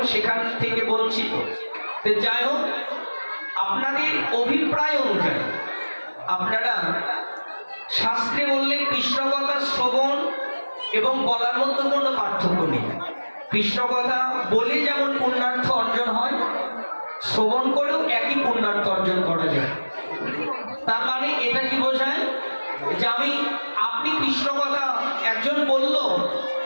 সেখান থেকে বঞ্চিত। যাই হোক, আপনাদের অভিপ্রায় অনুযায়ী আপনারা শাস্ত্রে বললে কৃষ্ণ কথা শ্রবণ এবং বলার মধ্যে কোনো পার্থক্য নেই। কৃষ্ণ কথা বলে যেমন পুণ্যার্থ অর্জন হয়, শ্রবণ করেও একই পুণ্যার্থ অর্জন করা যায়। তার মানে এটা কি বোঝায় যে আপনি কৃষ্ণ কথা একজন বলল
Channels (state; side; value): inverted; both; correlation -1.00